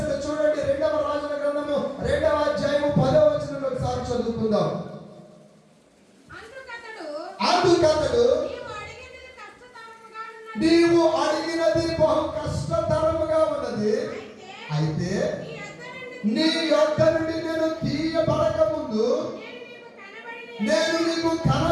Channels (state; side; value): identical; both; correlation 1.00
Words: చూడండి. 2వ రాజుల గ్రంథము 2వ అధ్యాయము 10వ వచనంలో ఒకసారి చదువుకుందాం. అందుకతడు నీవు అడిగినది బహు కష్టతరముగా ఉన్నది, అయితే నీ యొద్ద నుండి నేను తీయబడక ముందు నేను నీకు